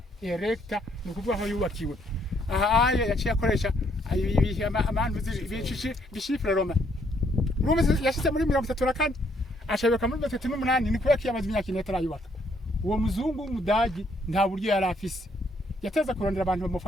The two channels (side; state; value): both; normal; correlation 0.69